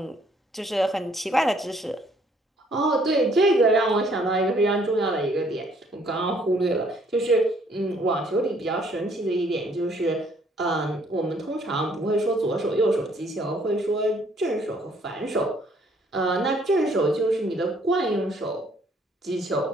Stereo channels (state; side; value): normal; both; correlation 0.64